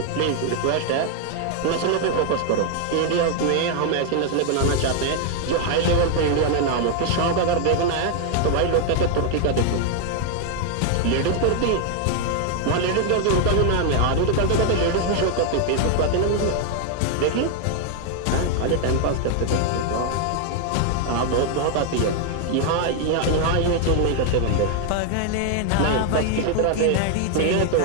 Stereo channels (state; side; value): different; both; correlation 0.00